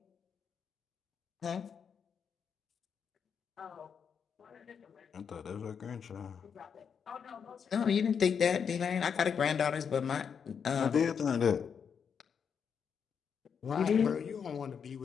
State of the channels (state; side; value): quieter; right; 6.9 dB